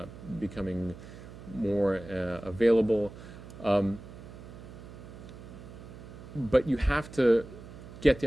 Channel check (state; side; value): noise; right; hum, 15 dB below the sound